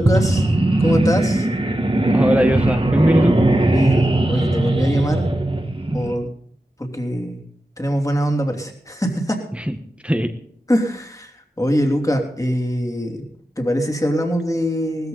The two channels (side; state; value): both; normal; correlation 0.91